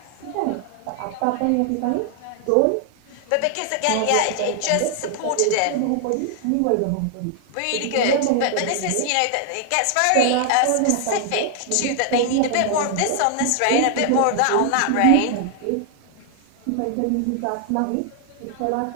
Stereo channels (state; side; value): different; both; correlation 0.00